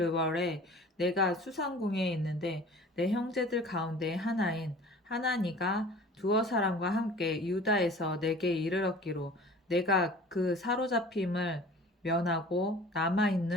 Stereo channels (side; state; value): both; normal; correlation 0.44